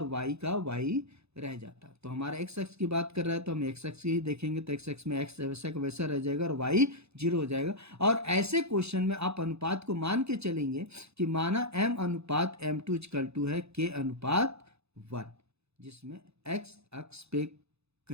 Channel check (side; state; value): left; late; 0.79 ms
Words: y का y रह जाता। तो हमारा x अक्ष की बात कर रहा है तो हम x अक्ष ही देखेंगे, तो x अक्ष में x वैसा का वैसा रह जाएगा और y 0 हो जाएगा। और ऐसे क्वेश्चन में आप अनुपात को मान के चलेंगे कि माना m अनुपात m2 इक्वल टू है k अनुपात 1, जिसमें x अक्ष पे